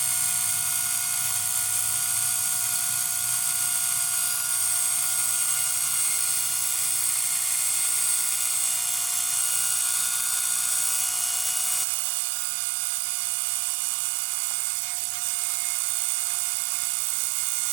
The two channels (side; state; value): left; drops out; at 11.9 s